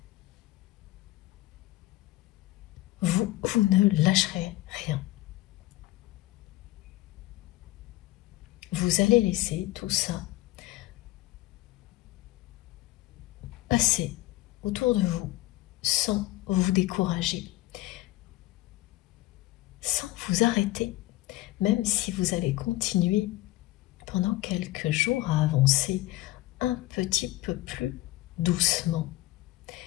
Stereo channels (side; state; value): right; quieter; 17.7 dB